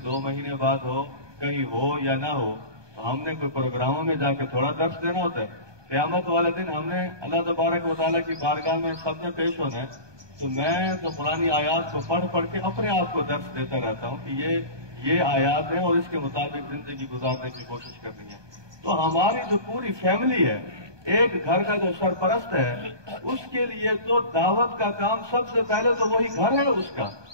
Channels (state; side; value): late; left; 1.2 ms